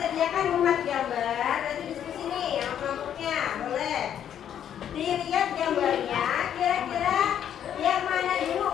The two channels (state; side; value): quieter; right; 9.6 dB